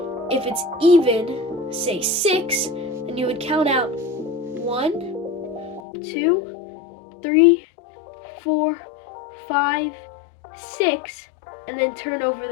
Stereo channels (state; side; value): drops out; right; at 5.8 s